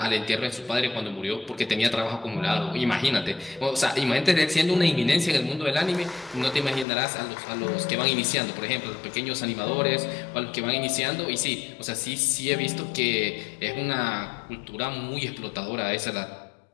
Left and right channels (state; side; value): drops out; right; at 6.9 s